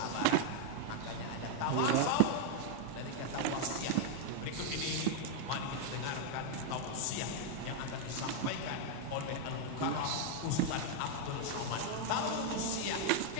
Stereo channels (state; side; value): different; both; correlation 0.00